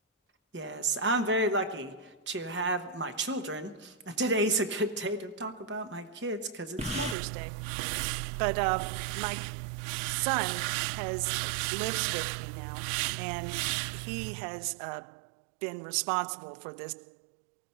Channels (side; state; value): left; drops out; at 7.2 s